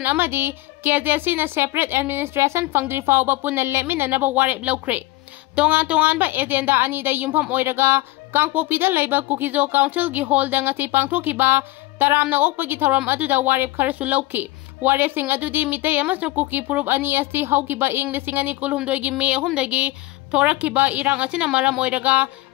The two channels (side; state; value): right; quieter; 19.6 dB